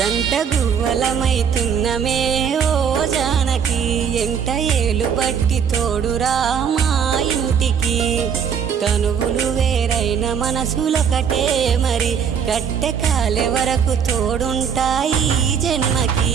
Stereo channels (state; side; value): quieter; left; 7.4 dB